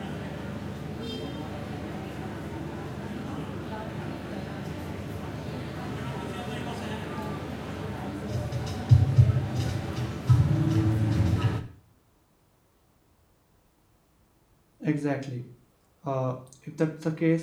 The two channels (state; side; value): identical; both; correlation 1.00